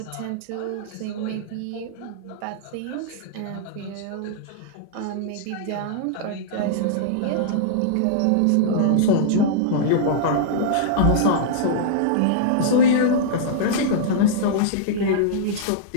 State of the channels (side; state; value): both; different; correlation -0.02